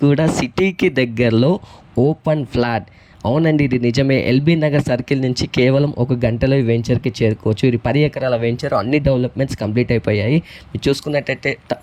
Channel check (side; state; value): both; identical; correlation 1.00